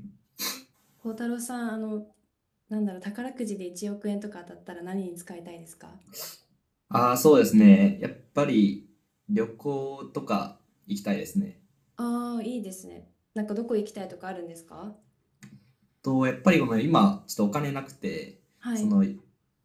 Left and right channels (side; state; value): both; identical; correlation 1.00